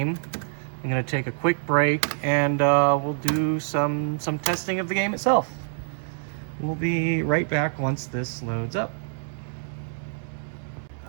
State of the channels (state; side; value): silent; left; digital silence